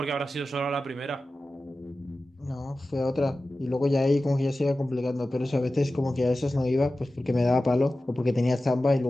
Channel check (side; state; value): both; normal; correlation 0.95